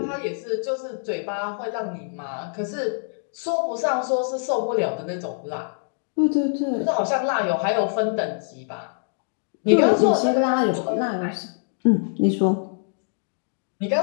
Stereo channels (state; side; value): silent; right; digital silence